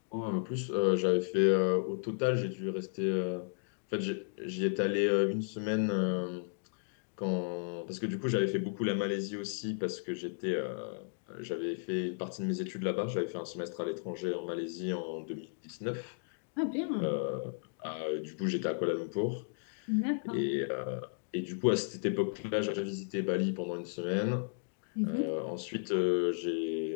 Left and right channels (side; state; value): right; silent; digital silence